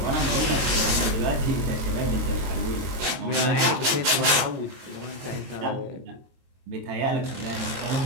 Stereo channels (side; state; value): left; late; 22 ms